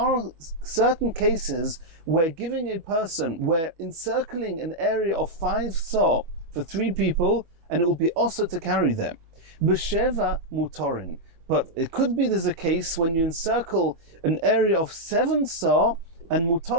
certain cases where giving a person, where encircling an area of 5 sa for 3 people, and it will be also to carry them. B'sheva mutorin. But it could be there's a case when you encircle an area of 7 sa, and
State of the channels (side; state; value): left; late; 25 ms